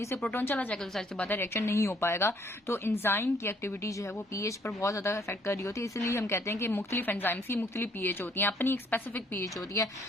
से प्रोटोन चला जाएगा, तो सारी बात है रिएक्शन नहीं हो पाएगा। तो एंजाइम की एक्टिविटी जो है वो पीएच पर बहुत ज्यादा इफेक्ट कर रही होती है, इसलिए हम कहते हैं कि मुख्तलिफ एंजाइम्स की मुख्तलिफ पीएच होती है, अपनी एक स्पेसिफिक पीएच होती है,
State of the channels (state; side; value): normal; both; correlation 0.64